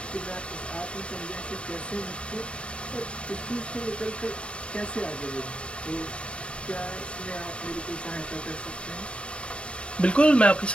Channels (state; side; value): late; right; 0.057 ms